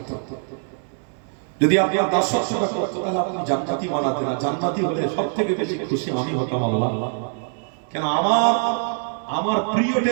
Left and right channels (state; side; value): silent; left; digital silence